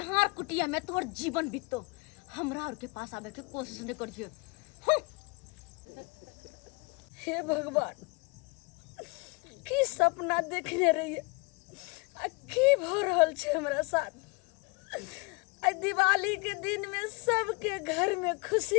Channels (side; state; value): right; quieter; 28.7 dB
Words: कुटिया में तोहर जीवन बीतो। हमरा और के पास आवे के कोशिश नहीं करिए। हे भगवान, की सपना देखने रहिए आ की भ रहल छे हमरा साथ। आ दिवाली के दिन में सबके घर में